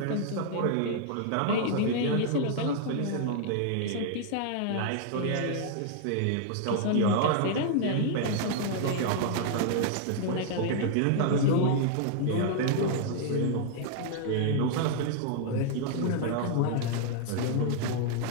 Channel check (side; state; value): both; different; correlation -0.01